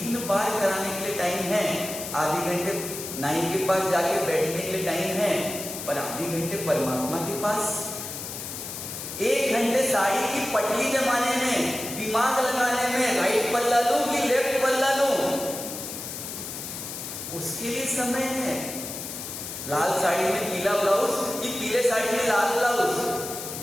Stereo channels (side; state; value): left; noise; hiss, 8 dB below the sound